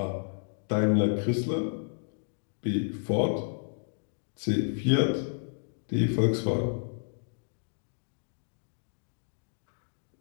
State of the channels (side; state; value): right; silent; digital silence